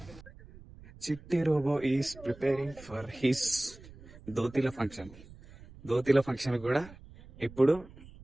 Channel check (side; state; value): right; noise; rumble, 20 dB below the sound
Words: Chitti robo is preparing for his దోతిల ఫంక్షన్. దోతిల ఫంక్షన్ కూడా ఇప్పుడు